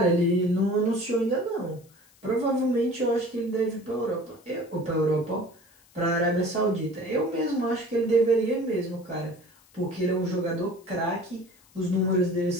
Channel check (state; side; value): noise; left; hiss, 29 dB below the sound